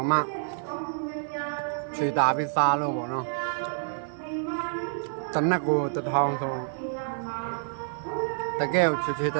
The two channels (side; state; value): left; silent; 59 dB below the other